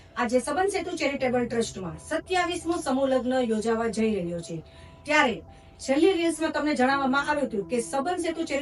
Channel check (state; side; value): identical; both; correlation 1.00